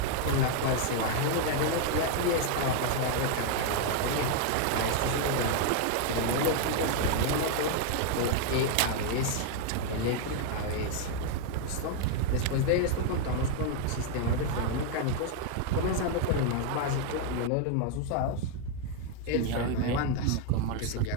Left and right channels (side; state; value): both; different; correlation 0.00